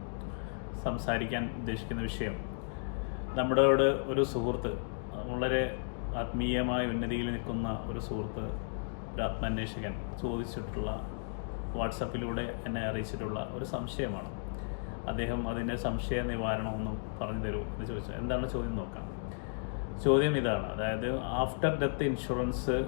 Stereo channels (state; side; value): silent; right; digital silence